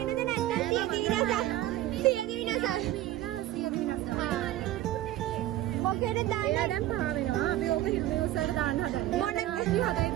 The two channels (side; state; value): left; quieter; 14.3 dB